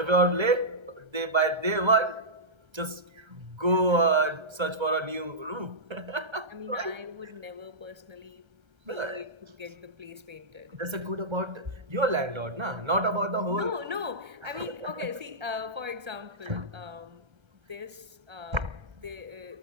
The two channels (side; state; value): left; late; 1.3 ms